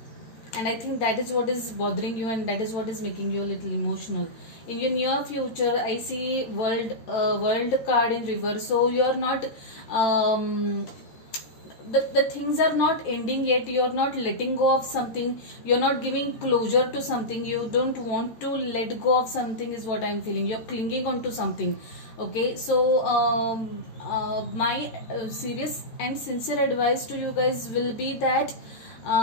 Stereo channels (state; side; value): late; right; 13 ms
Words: I think that is what is bothering you, and that is what is making you a little emotional. In your near future, I see world card in reverse. So you are not the things are not ending yet. You're not letting go of something, you're not giving closure to something, you don't want to let go of something is what I'm feeling. You're clinging on to something. Okay, so my serious and sincere advice to you guys will be that